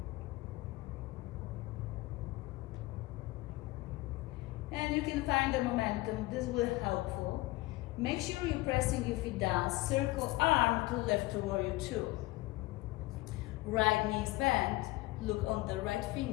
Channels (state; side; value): quieter; right; 20.0 dB